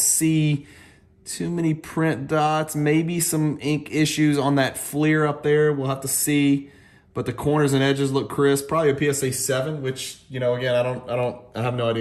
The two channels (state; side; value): identical; both; correlation 1.00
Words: too many print dots. Maybe some ink issues on that Fleer up there. We'll have to see. But the corners and edges look crisp. Probably a PSA 7, which, you know, again, I have no